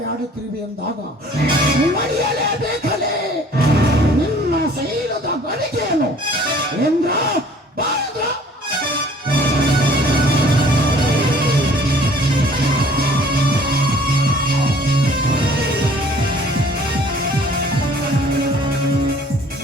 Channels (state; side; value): normal; both; correlation 0.54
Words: ಎಂದಾಗ ಮರೆಯಲೇಬೇಕಲೇ ನಿನ್ನ ಶೈಲದ ಗಳಿಗೆಯನ್ನು ಎಂದ್ರ ಬಾರದ್ರ.